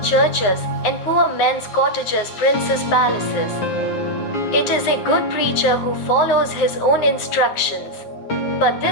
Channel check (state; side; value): late; right; 9.5 ms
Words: churches, and poor men's cottages princes' palaces. It is a good preacher who follows his own instructions. But